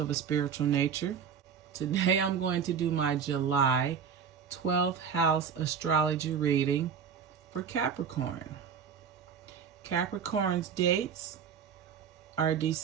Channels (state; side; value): quieter; left; 7.0 dB